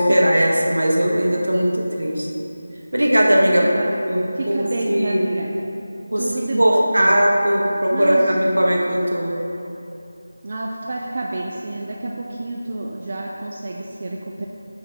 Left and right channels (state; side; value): inverted; both; correlation -0.97